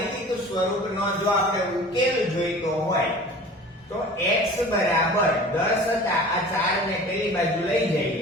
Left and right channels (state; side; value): normal; both; correlation 0.42